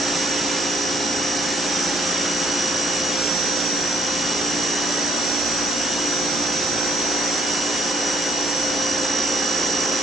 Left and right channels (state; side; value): normal; both; correlation 0.68